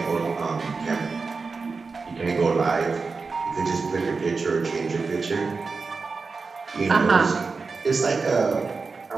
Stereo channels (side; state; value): left; quieter; 4.4 dB